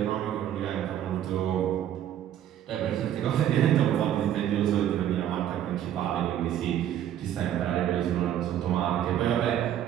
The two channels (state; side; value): quieter; left; 10.9 dB